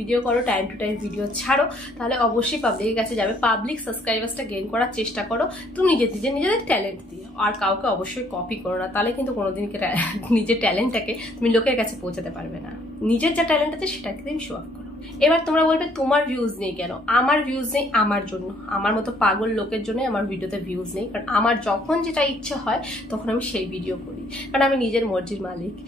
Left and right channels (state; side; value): normal; both; correlation 0.64